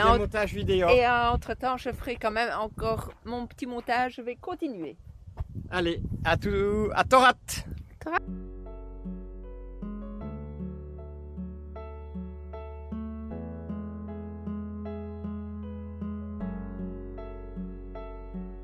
montages vidéo. Et entre-temps, je ferai quand même encore mon petit montage. Je vais continuer. Allez, à Torat.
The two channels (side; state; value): both; identical; correlation 1.00